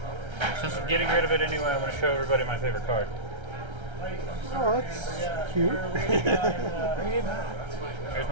Since I'm getting rid of it anyway, I'm going to show everybody my favorite card. Oh, that's cute. Here's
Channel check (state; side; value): late; left; 1.3 ms